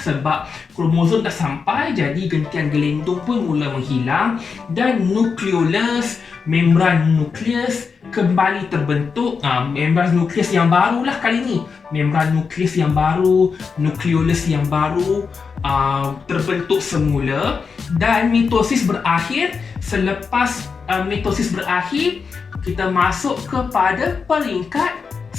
kromosom dah sampai, jadi gentian gelindung pun mula menghilang. Dan nukleolus, membran nukleus kembali terbentuk. Membran nukleus yang baru lah kali ni. Membran nukleus yang baru, nukleolus yang baru terbentuk semula. Dan mitosis berakhir. Selepas mitosis berakhir, kita masuk kepada peringkat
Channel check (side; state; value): right; quieter; 5.4 dB